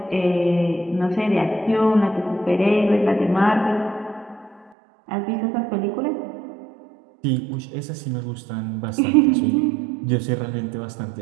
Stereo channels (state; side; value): drops out; left; at 4.7 s